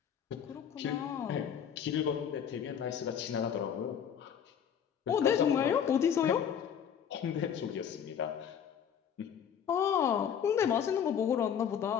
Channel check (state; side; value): quieter; right; 8.4 dB